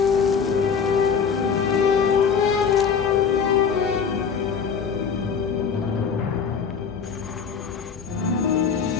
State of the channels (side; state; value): right; quieter; 6.4 dB